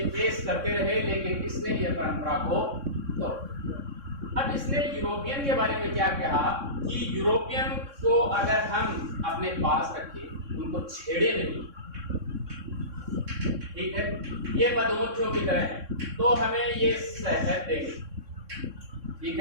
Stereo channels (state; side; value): late; left; 3.6 ms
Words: पेश करते रहे, लेकिन इसने ये परंपरा को तो अब इसने यूरोपियन के बारे में क्या कहा कि यूरोपियन को अगर हम अपने पास रखें, उनको छेड़े नहीं, ठीक है, ये मधुमक्खियों की तरह है, तो हमें ये शहद देंगे, ठीक